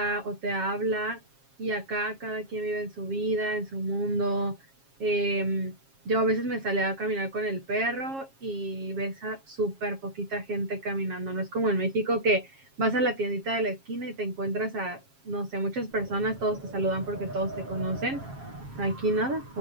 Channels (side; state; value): left; late; 7.4 ms